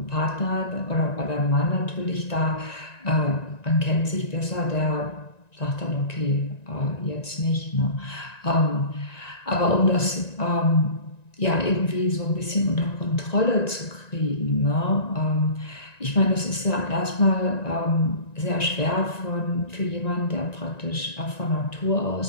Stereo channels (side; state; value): right; late; 1.9 ms